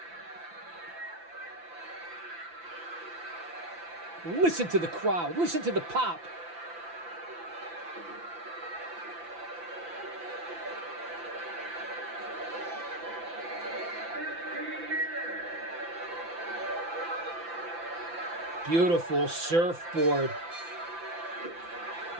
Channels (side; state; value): left; late; 5.9 ms